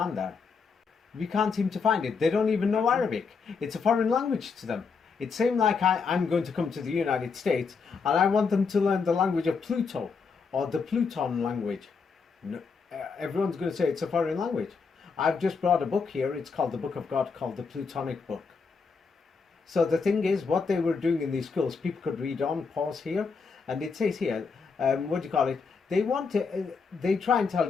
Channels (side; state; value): right; quieter; 5.2 dB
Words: there. We can't seem to find it. They don't even know Arabic. It's a foreign language to them. It's same like I'm going to come to the United States and I want them to learn the language of Pluto or the Pluton language. No, everyone's going to say it's a foreign language. I've just brought a book here. It's called the Book of God, called the Plutonic Book. So the thing is, what they were doing in these schools, people could read on, pause here, and it says here, what do you call it? They want to, they try and tell